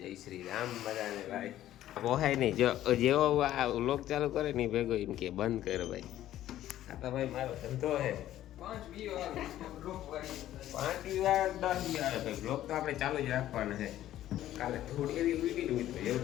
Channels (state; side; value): quieter; right; 13.1 dB